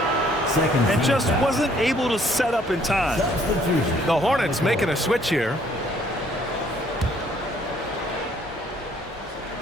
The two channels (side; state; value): both; normal; correlation 0.63